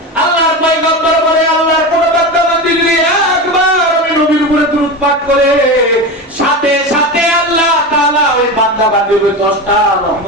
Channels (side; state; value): both; normal; correlation 0.23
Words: আল্লাহর পয়গম্বর বলে আল্লাহর কোন বান্দা বান্দি যদি একবার আমি নবীর উপরে দরুদ পাঠ করে, সাথে সাথে আল্লাহ তাআলা ওই বান্দা বান্দির উপরে 10টা